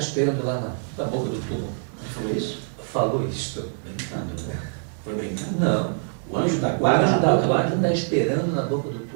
lá na boca do túmulo. Ele falou isso? Falou isso. Brincando, né? Foi brincando? Não. O anjo da O guarda anjo da guarda está esperando na boca do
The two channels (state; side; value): silent; left; digital silence